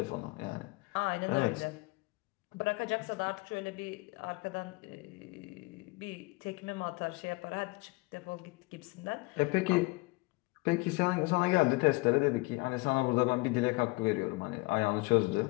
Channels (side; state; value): right; quieter; 25.2 dB